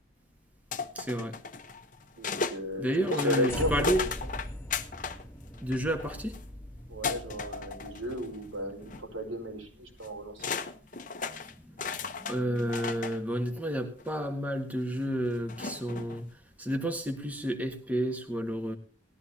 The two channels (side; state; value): both; normal; correlation 0.45